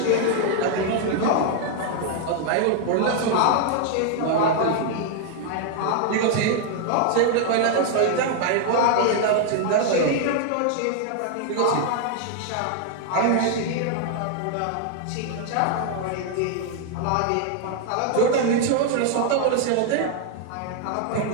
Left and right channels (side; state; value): both; different; correlation 0.00